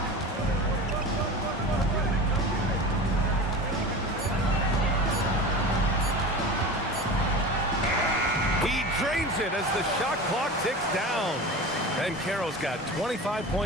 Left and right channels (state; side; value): normal; both; correlation 0.32